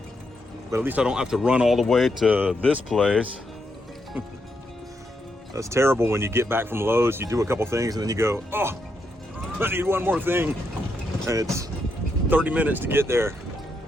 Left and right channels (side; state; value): both; normal; correlation 0.81